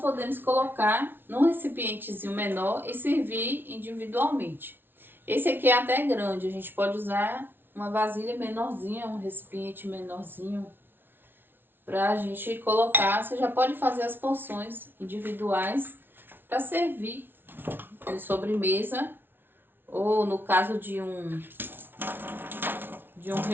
colocar num recipientezinho menor e servir individualmente. Esse aqui é até grande, a gente pode usar uma vasilha menorzinha, um recipiente menorzinho, pra gente colocar. Você já pode fazer as porções individuais para servir de sobremesa, ou no caso de um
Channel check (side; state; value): left; late; 0.10 ms